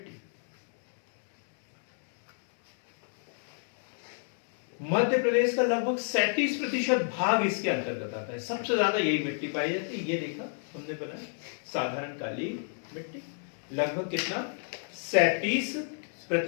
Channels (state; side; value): silent; right; digital silence